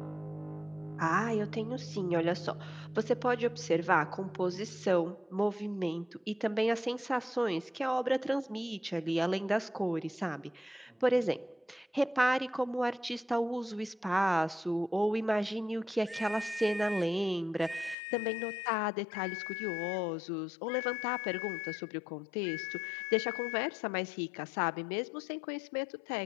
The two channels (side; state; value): right; drops out; at 17.9 s